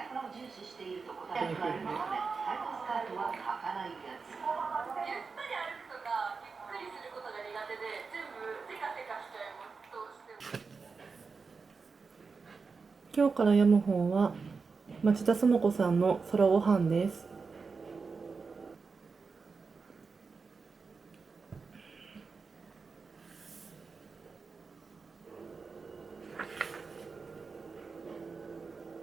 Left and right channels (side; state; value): left; quieter; 4.8 dB